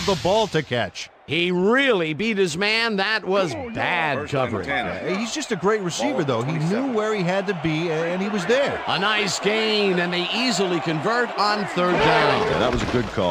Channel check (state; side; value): identical; both; correlation 1.00